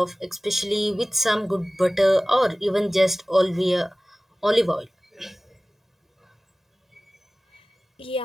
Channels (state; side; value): normal; both; correlation 0.98